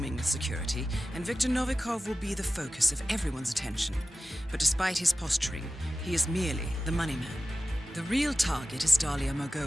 with security, and Viktor Novikov will be the focus of everyone's attention. But despite his posturing, he is merely the money man. The real target is Dalia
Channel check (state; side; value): normal; both; correlation 0.95